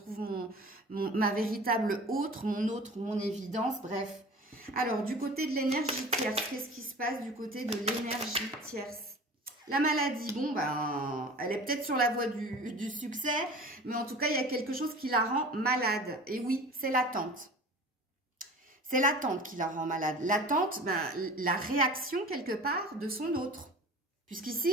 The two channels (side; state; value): both; normal; correlation 0.40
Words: ma véritable autre, mon évidence, bref. Alors, du côté de l'énergie tierce, qu'est-ce qui se passe du côté de l'énergie tierce? La maladie, bon, ben, elle est peut-être sur la voie du succès, mais en tout cas, il y a quelque chose qui la rend malade. Et oui, c'est l'attente. C'est l'attente qui la rend malade. L'attente, ben, la réaction quelque part de son autre. Puisqu'ici,